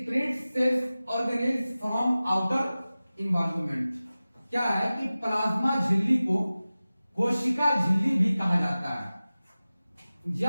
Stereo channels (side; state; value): both; inverted; correlation -0.97